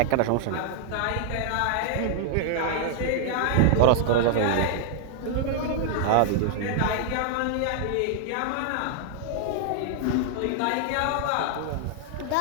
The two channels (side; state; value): both; different; correlation 0.00